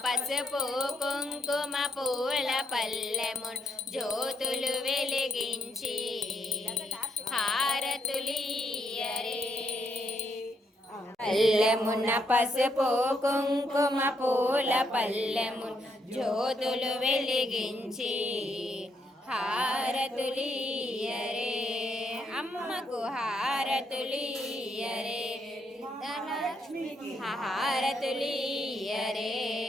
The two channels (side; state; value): both; normal; correlation 0.76